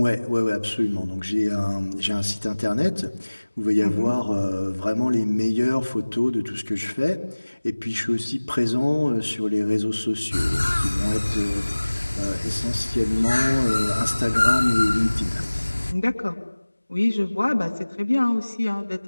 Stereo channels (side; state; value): both; inverted; correlation -1.00